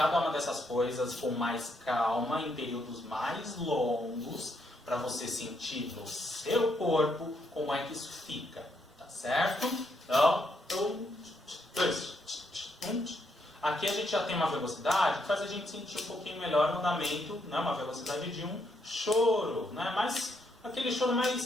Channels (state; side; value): normal; both; correlation 0.76